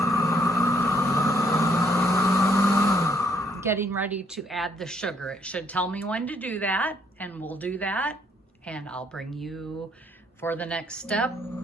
getting ready to add the sugar. It should tell me when to do that, and we'll do that, and I'll bring you for the next step.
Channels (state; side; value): normal; both; correlation 0.68